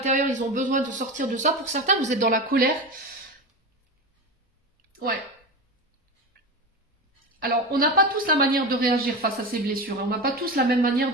ils ont besoin de sortir de ça. Pour certains, vous êtes dans la colère. Ouais. Alors, on n'a pas tous la manière de réagir face à ces blessures. Hein. On n'a pas tous la même manière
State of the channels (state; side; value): normal; both; correlation 0.23